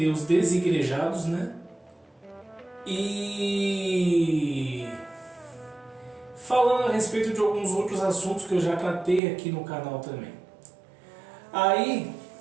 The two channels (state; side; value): drops out; left; at 9.2 s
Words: os desigrejados, né? E falando a respeito de alguns outros assuntos que eu já tratei aqui no canal também. Aí,